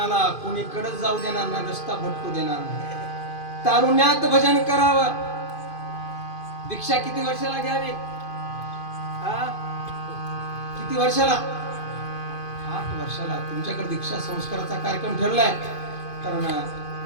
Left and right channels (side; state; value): right; late; 2.5 ms